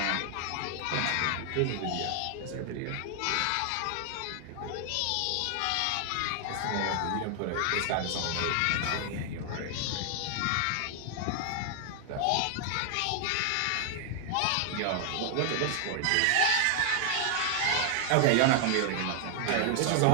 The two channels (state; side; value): different; both; correlation 0.00